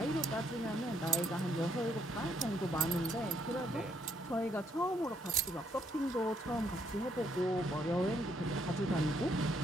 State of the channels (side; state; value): both; normal; correlation 0.72